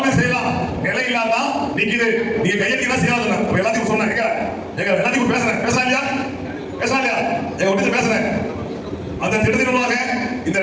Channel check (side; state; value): both; identical; correlation 1.00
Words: செய்யலாம், நிலை இல்லாம நிக்குது, நீங்க கையெழுத்து செய்யலாம். அப்ப எல்லாத்தையும் சொன்னாங்க, எங்க எல்லாத்தையும் பேசுறேன், பேசலாம் இல்லையா எங்க ஒட்டி பேசுறேன். அந்த திட்டத்தின் மூலமாக இந்த